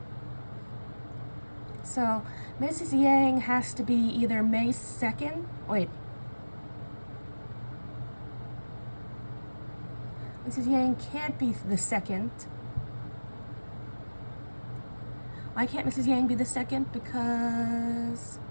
so Mrs. Yang has to be either May 2nd. Wait. Mrs. Yang can't be the 2nd. Why can't Mrs. Yang be the 2nd? Because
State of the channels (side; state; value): both; inverted; correlation -1.00